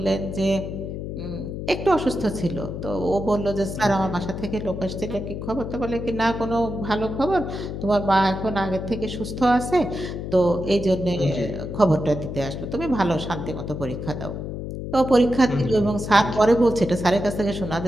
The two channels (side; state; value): left; noise; hum, 6 dB below the sound